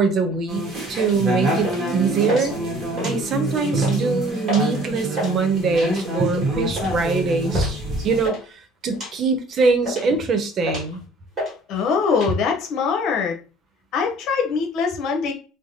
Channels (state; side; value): normal; both; correlation 0.53